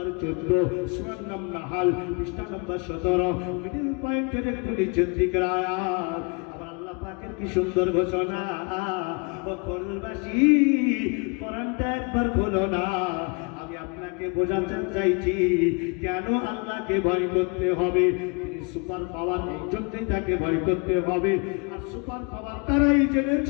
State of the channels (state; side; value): quieter; right; 32.4 dB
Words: 14 সূরার নাম নাহাল, পৃষ্ঠা নম্বর 17, মিডল পয়েন্টের একটু নিচের দিকের আয়াত। আমার আল্লাহ পাকের কি সুন্দর ঘোষণা! ও কোরআনবাসী, কোরআনটা একবার খোলো না। আমি আপনাকে বোঝাতে চাইছি কেন আল্লাহকে ভয় করতে হবে। তিনি সুপার পাওয়ার, এই জন্যই তাকে ভয় করতে হবে। আর সুপার পাওয়ার তারাই